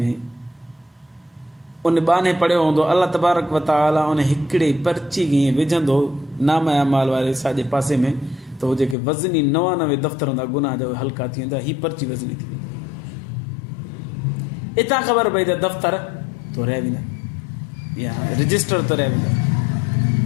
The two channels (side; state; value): right; drops out; at 9.0 s